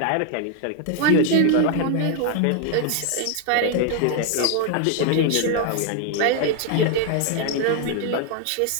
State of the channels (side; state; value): both; different; correlation 0.00